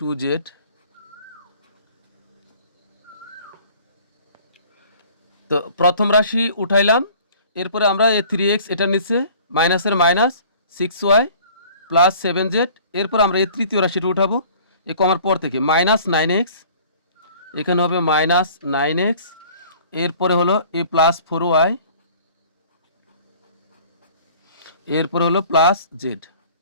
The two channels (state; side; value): inverted; both; correlation -0.50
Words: তো প্রথম রাশি উঠাইলাম, এরপরে আমরা এই 3x এটার নিচে মাইনাসের মাইনাস 6y প্লাস 7z, এরপর আমরা এই তৃতীয় রাশিটা উঠাবো এই কমার পর থেকে, মাইনাস 9x, এখানে হবে মাইনাস 9x, এরপরে হলো এ প্লাস 4y, এরপরে হলো প্লাস z।